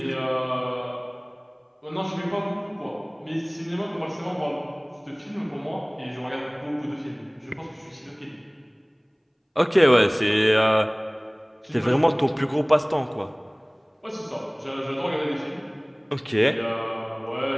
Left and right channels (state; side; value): identical; both; correlation 1.00